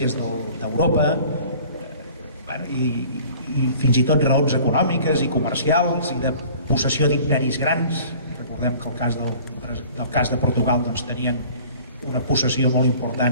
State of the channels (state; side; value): inverted; both; correlation -0.48